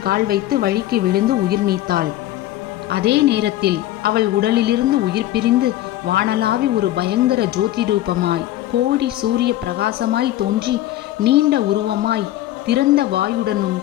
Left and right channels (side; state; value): right; quieter; 14.3 dB